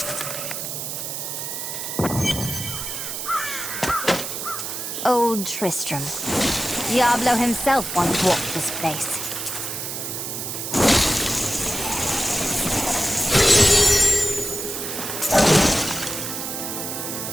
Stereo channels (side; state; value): right; noise; hiss, 5 dB below the sound